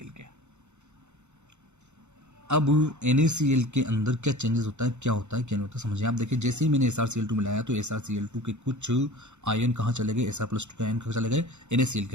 के। अब NaCl के अंदर क्या चेंजेस होता है, क्या होता है, क्या नहीं होता, समझिए आप। देखिए जैसे ही मैंने SrCl2 मिलाया तो SrCl2 के कुछ आयन कहाँ चले गए, Sr+2 के आयन कहाँ चले गए, NaCl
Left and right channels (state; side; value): late; left; 0.83 ms